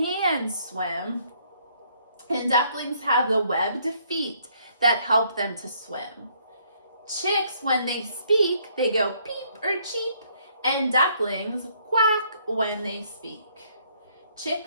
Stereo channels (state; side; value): inverted; both; correlation -0.67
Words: swim. And ducklings have the webbed feet that help them to swim. Chicks, when they speak, they go peep or cheep, and ducklings quack when they speak.